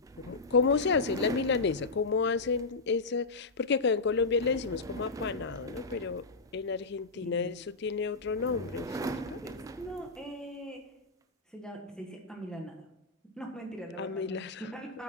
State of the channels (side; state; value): right; quieter; 3.8 dB